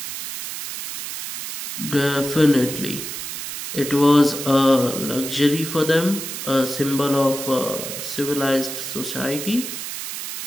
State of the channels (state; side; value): noise; right; hiss, 7 dB below the sound